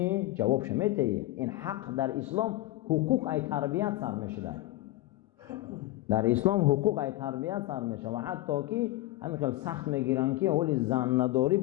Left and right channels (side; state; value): right; quieter; 17.4 dB